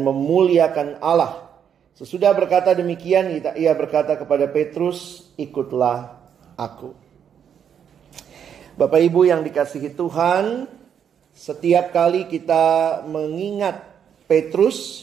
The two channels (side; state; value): left; quieter; 8.3 dB